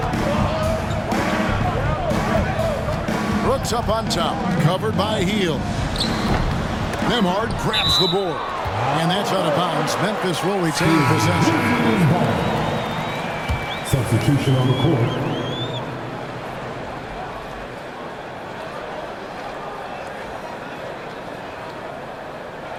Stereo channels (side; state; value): both; identical; correlation 1.00